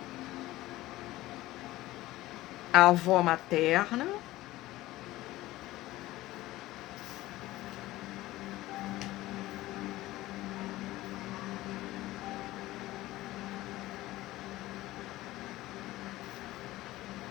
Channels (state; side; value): quieter; right; 17.1 dB